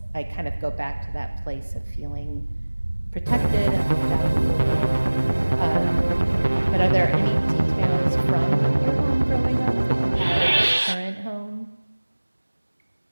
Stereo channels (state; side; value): inverted; both; correlation -1.00